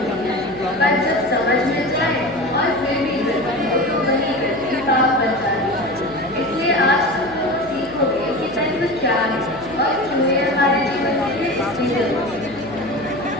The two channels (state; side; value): noise; left; hum, 20 dB below the sound